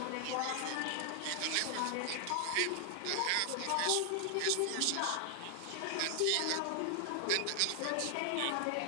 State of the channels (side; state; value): both; different; correlation 0.00